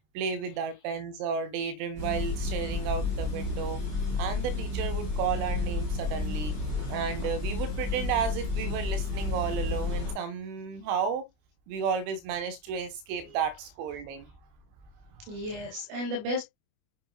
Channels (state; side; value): late; left; 20 ms